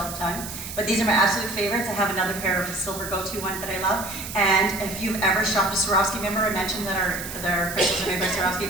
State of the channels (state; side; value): noise; right; hiss, 9 dB below the sound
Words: the time. But these are my absolute favorites. I have another pair of silver go-to ones that I love. And if you've ever shopped at Swarovski, remember I mentioned that our crystals are made by